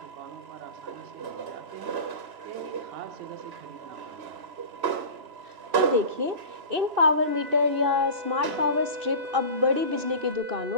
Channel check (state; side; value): late; left; 3.0 ms